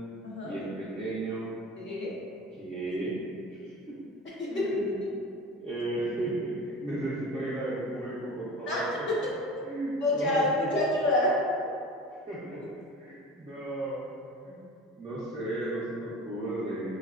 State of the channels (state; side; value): normal; both; correlation 0.36